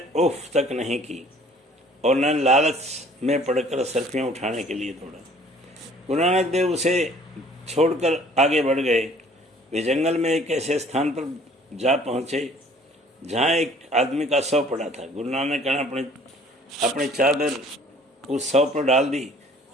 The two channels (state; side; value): normal; both; correlation 0.54